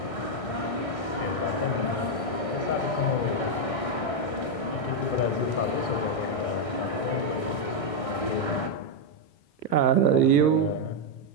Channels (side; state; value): right; late; 1.6 ms